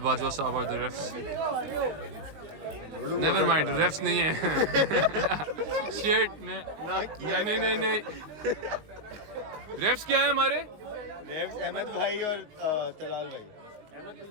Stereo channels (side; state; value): left; late; 19 ms